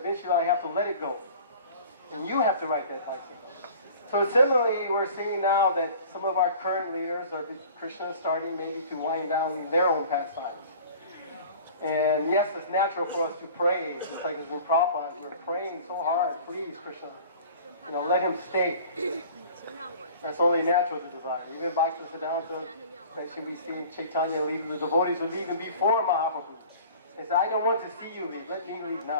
I have to let it go. And you have to ride that bicycle. So similarly, we're seeing now that some of our current leaders are Krishna starting maybe to wind down their own pastimes. And yes, it's natural for us to pray, just like as in Prabhupada, we're praying so hard, please Krishna, let him stay. That's only natural to desire. Even Bhaktisiddhanta, especially we see Chaitanya leave, the devotees were leaving before Mahaprabhu. They said, I don't want to see you leave, let me leave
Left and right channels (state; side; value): inverted; both; correlation -0.44